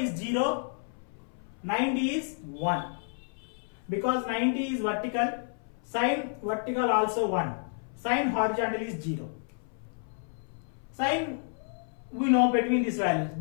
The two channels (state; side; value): silent; right; 58 dB below the other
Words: 0, 90 is 1. Because 90 is vertical, sine vertical also 1. Sine horizontal is 0. Sine we know between these values,